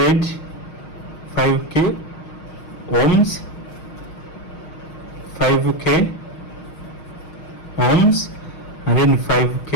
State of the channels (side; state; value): right; late; 6.4 ms